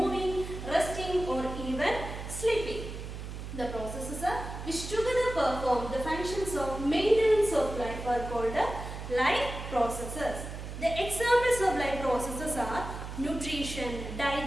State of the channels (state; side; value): noise; right; hum, 8 dB below the sound